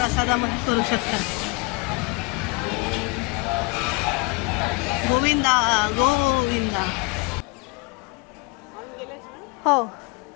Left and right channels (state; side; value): quieter; right; 27.0 dB